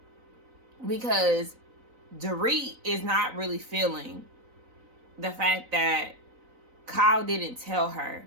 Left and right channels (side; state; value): left; late; 3.9 ms